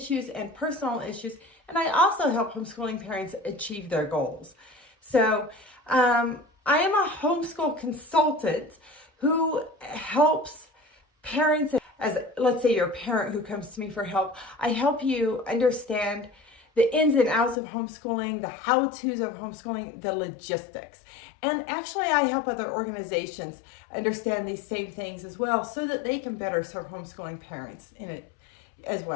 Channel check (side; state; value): right; drops out; at 17.6 s